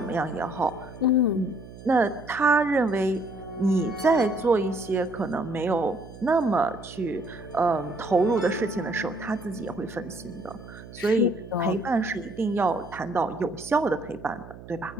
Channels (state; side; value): noise; right; hum, 16 dB below the sound